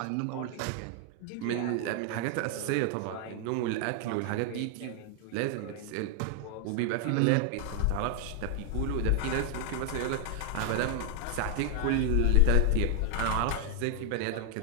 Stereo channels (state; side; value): different; both; correlation 0.00